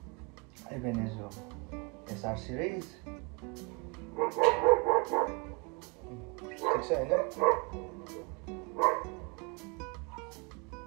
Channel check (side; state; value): left; quieter; 30.9 dB